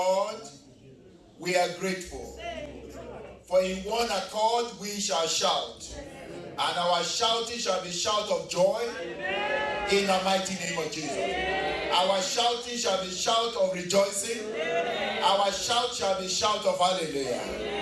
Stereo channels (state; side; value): identical; both; correlation 1.00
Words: We are grateful. For in one accord we shall shout, and our shouting shall be shout of joy in the mighty name of Jesus. Our shouting shall be shout of rejoicing. Our shout shall be shout of